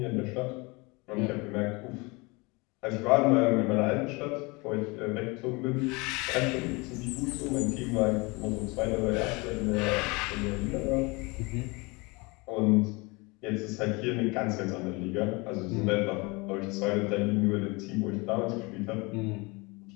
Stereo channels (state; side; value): quieter; right; 26.6 dB